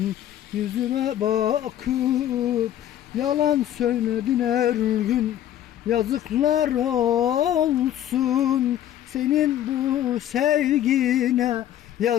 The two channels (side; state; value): right; quieter; 11.6 dB